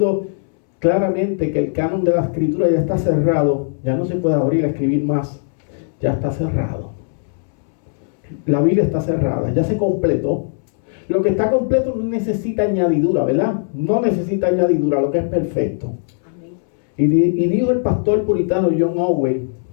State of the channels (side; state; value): right; silent; 67 dB below the other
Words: claramente que el canon de la escritura ya está cerrado, ya no se puede abrir a escribir más. Ya está cerrado. La Biblia está cerrada, ya se completó. Lo que está completo no necesita añadidura, ¿verdad? No necesita añadidura, lo que es perfecto. Y dijo el pastor puritano John Owen,